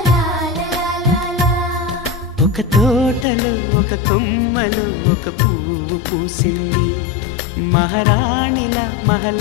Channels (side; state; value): right; drops out; at 3.2 s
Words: ఒక తోటలో ఒక కొమ్మలో ఒక పువ్వు పూసింది మహారాణిలా